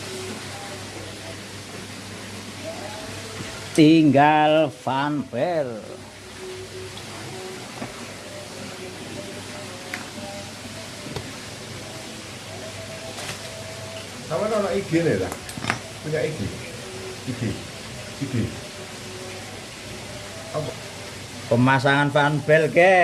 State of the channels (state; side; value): identical; both; correlation 1.00